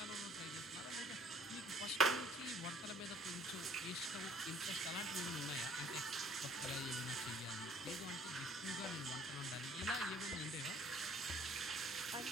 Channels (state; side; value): normal; both; correlation 0.57